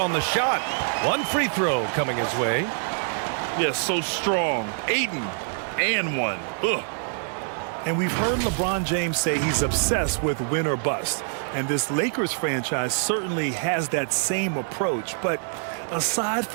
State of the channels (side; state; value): left; silent; digital silence